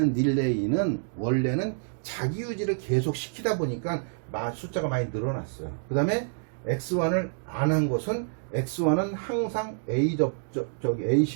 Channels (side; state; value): left; silent; digital silence